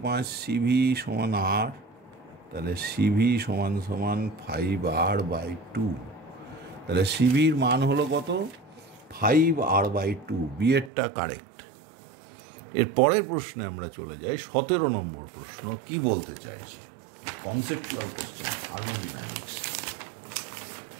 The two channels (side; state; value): left; drops out; at 10.9 s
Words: CV সমান R, তাহলে CV সমান 5R/2। তাহলে সিভির মান হলো কত? 5R/2। বিয়েরটা কারেক্ট। এর পরের প্রশ্নে আমরা চলে যাই। 17 নম্বর প্রশ্ন কি বলতে চাইছি? Conceptual question, thermodynamics.